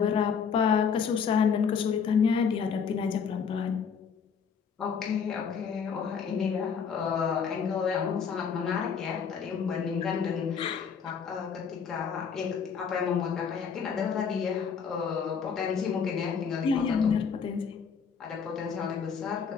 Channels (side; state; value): right; quieter; 6.5 dB